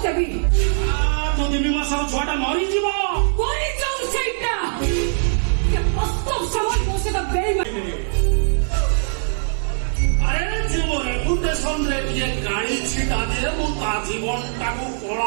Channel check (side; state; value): left; silent; digital silence